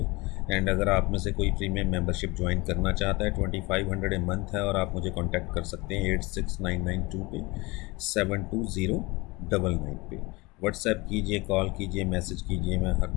And अगर आप में से कोई प्रीमियम मेंबरशिप ज्वाइन करना चाहता है, 2500 ए मंथ है, और आप मुझे कांटेक्ट कर सकते हैं 86992 पे 72099 पे। व्हाट्सएप कीजिए, कॉल कीजिए, मैसेज कीजिए, मैं हर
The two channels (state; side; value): quieter; right; 24.1 dB